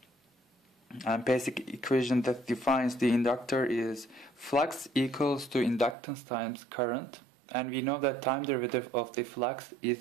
And basic equation that defines the inductor is flux equals to inductance times current, and we know that time derivative of the flux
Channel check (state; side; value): drops out; left; at 6.0 s